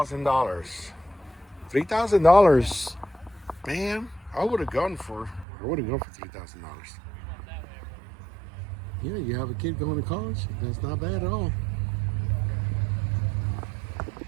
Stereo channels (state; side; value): drops out; left; at 5.5 s